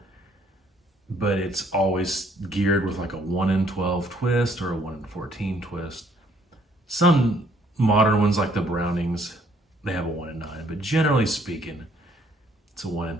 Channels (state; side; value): normal; both; correlation 0.65